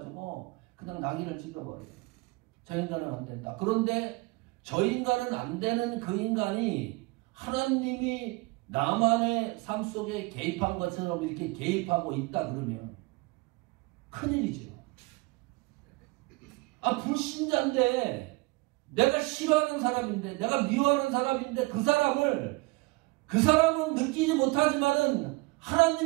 그냥 낙인을 찍어버려요. 저 인간은 안 된다. 그런데 저 인간은 안 되는 그 인간이 하나님이 나만의 삶 속에 개입한 것처럼 이렇게 개입하고 있다 그러면 큰일이죠. 불신자인데 내가 싫어하는 사람인데 내가 미워하는 사람인데 그 사람은 느끼지 못하지만은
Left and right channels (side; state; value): left; quieter; 24.6 dB